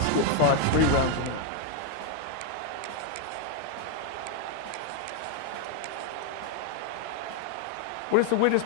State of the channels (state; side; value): different; both; correlation 0.01